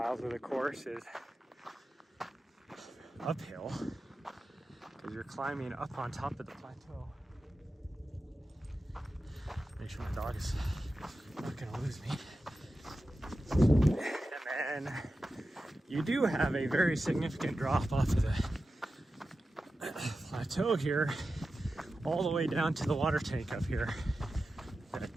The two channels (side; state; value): both; normal; correlation 0.92